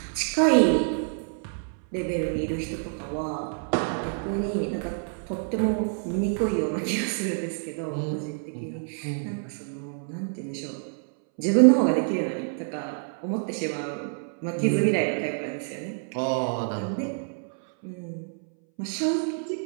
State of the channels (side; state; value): left; silent; 60 dB below the other